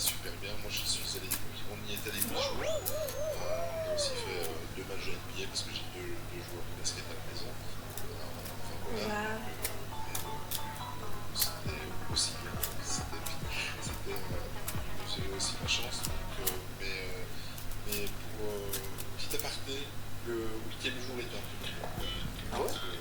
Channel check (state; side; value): identical; both; correlation 1.00